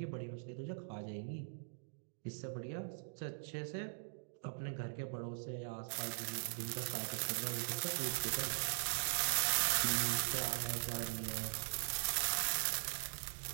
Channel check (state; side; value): silent; left; digital silence